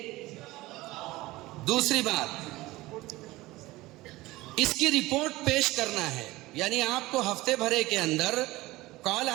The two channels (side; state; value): left; quieter; 19.2 dB